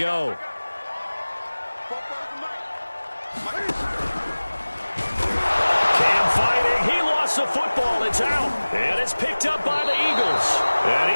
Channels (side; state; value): both; inverted; correlation -1.00